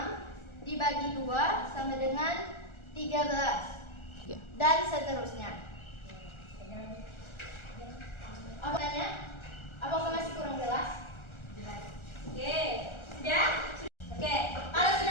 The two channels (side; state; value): right; late; 1.4 ms